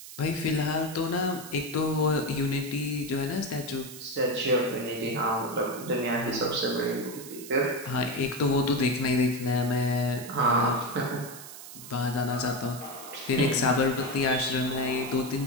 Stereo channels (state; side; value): noise; right; hiss, 14 dB below the sound